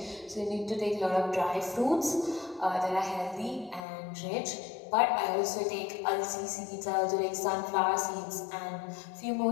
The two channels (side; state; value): right; drops out; at 3.9 s